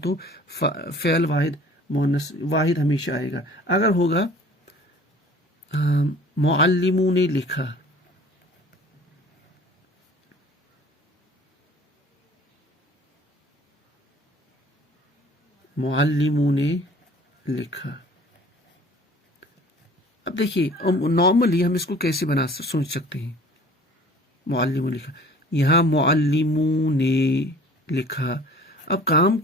فعل واحد مؤنث واحد ہمیشہ آئے گا. اگر ہوگا معلموں نے لکھا، معلموں نے لکھا. اب دیکھیے نارملی ہم اس کو کیسے سوچ سکتے ہیں؟ معلموں نے لکھا، یہاں معلموں نے لکھا. اب کام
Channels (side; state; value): both; normal; correlation 0.49